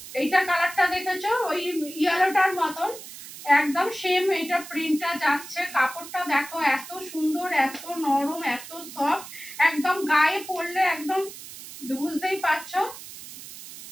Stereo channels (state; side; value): noise; right; hiss, 14 dB below the sound